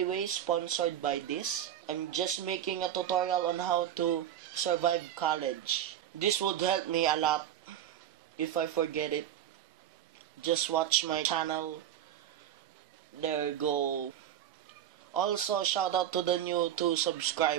way sponsored by this. I'm just making a tutorial on how to survive college. This would help me a lot. If I forget it, just watch my channel. There you go. Also, shout out to the new 2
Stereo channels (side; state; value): left; quieter; 10.7 dB